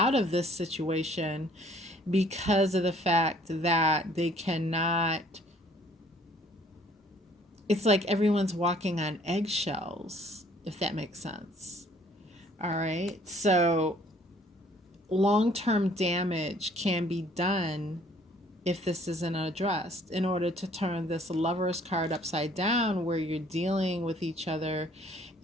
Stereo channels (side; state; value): both; normal; correlation 0.59